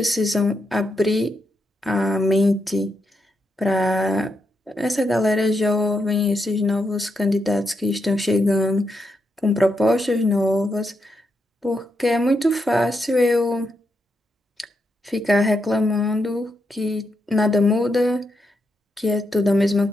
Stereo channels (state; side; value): normal; both; correlation 0.83